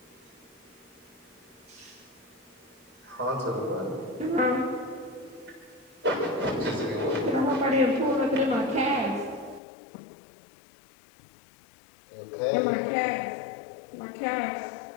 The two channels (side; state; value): right; drops out; at 9.6 s